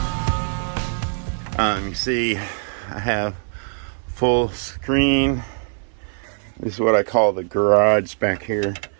You see, I have full screen. This is what I call the garage back here.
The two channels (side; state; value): left; silent; digital silence